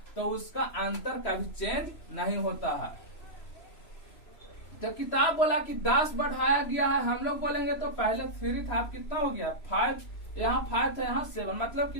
तो उसका अंतर कभी चेंज नहीं होता है। तो किताब बोला कि 10 बढ़ाया गया है, हम लोग बोलेंगे तो पहले 3 था, अब कितना हो गया 5, यहाँ 5 था, यहाँ 7, मतलब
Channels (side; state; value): right; late; 3.0 ms